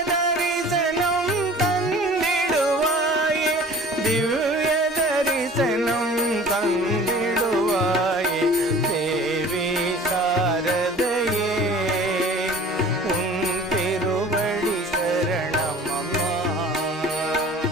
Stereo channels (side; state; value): both; normal; correlation 0.45